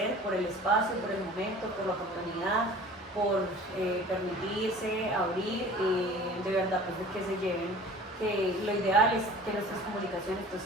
por el espacio, por el momento, por la oportunidad, por permitirse abrir, de verdad, pues de que se lleven, que lo ideal es que nuestras comunicaciones pues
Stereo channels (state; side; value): normal; both; correlation 0.45